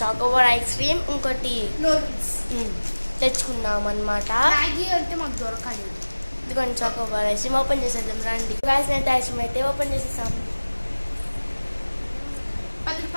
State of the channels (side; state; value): both; inverted; correlation -1.00